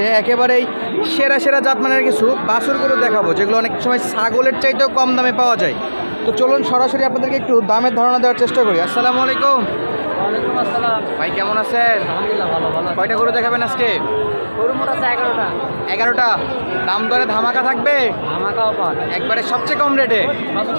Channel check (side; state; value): both; inverted; correlation -1.00